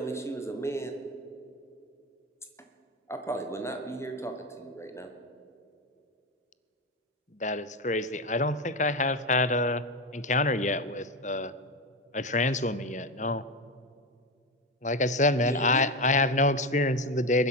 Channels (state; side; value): normal; both; correlation 0.16